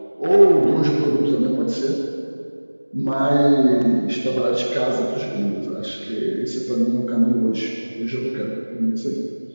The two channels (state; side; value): inverted; both; correlation -1.00